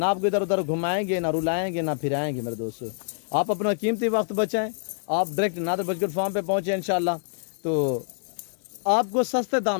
आपको इधर उधर घुमाएंगे, ना रुलाएंगे, ना फिराएंगे। मेरे दोस्तों आप अपना कीमती वक्त बचाएं, आप डायरेक्ट नादर बर्गर फार्म पे पहुँचे इंशाल्लाह, तो आपको सस्ते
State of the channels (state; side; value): silent; right; digital silence